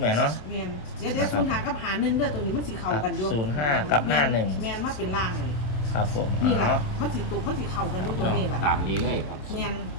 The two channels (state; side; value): late; right; 27 ms